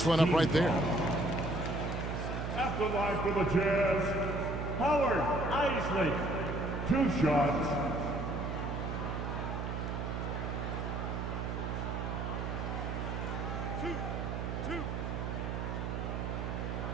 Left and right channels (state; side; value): noise; right; hum, 3 dB below the sound